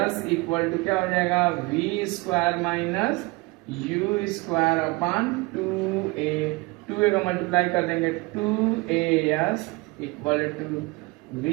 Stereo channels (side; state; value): left; quieter; 24.3 dB